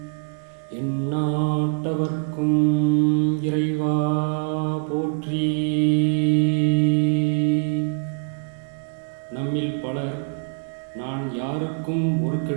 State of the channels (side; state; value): left; silent; digital silence